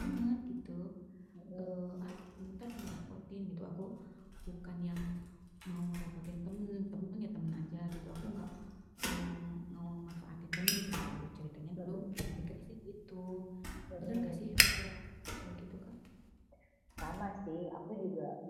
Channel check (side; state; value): both; identical; correlation 1.00